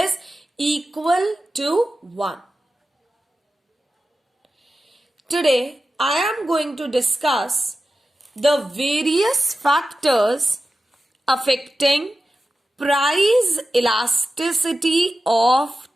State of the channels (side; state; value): both; normal; correlation 0.93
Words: equal to 1. Today I am going to discuss the various factors affecting price elasticity of